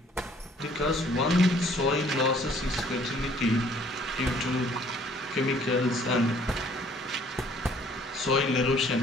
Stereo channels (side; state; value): both; normal; correlation 0.59